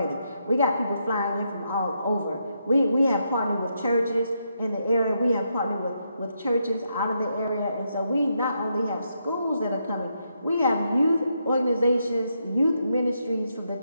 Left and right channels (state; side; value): inverted; both; correlation -0.80